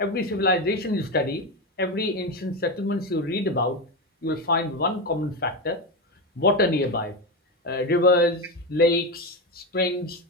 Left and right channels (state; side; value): normal; both; correlation 0.15